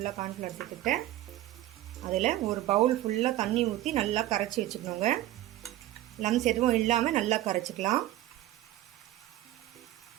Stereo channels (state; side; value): quieter; left; 14.7 dB